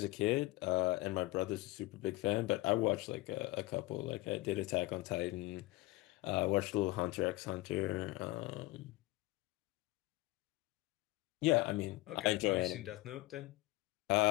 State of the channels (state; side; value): quieter; right; 20.2 dB